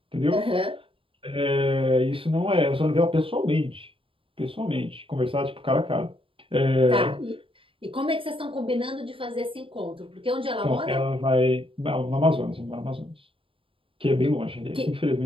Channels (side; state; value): left; late; 0.26 ms